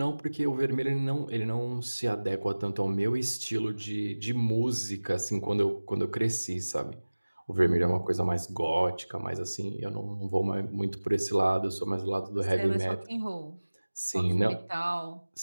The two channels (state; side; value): inverted; both; correlation -1.00